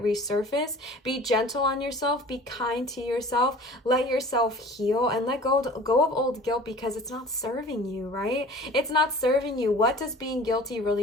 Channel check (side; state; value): both; normal; correlation 0.45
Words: resurface. Be gentle on yourself. Be kind to yourself. Let yourself heal and let go of old guilt, because it's not serving you, right? It's not serving you. What does being guilty